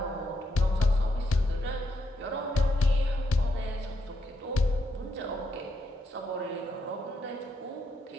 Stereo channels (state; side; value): normal; both; correlation 0.80